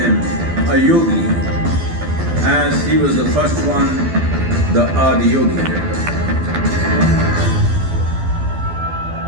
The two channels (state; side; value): late; left; 12 ms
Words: a yogi, as he was the first one, the Adiyogi.